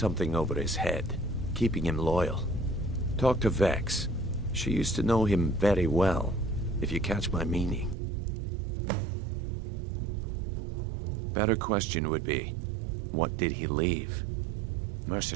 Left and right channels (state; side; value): drops out; left; at 8.0 s